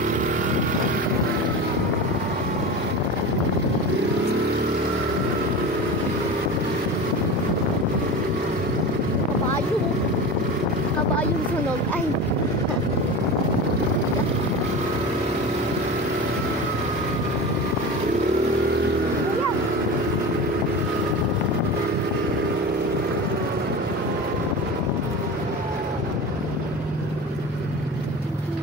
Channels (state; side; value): normal; both; correlation 0.29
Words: Kabayong sunog. Ay!